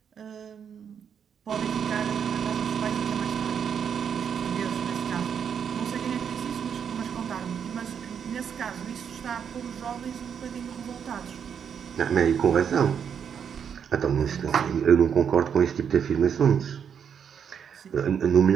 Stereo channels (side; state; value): left; quieter; 7.7 dB